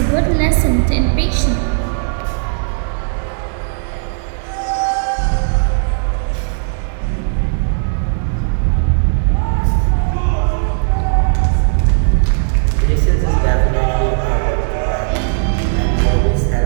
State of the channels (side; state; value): left; silent; 65 dB below the other